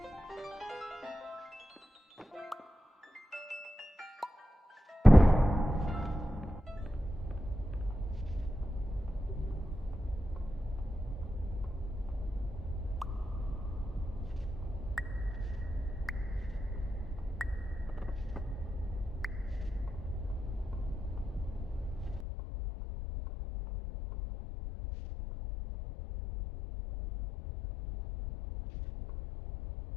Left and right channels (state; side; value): drops out; right; at 22.2 s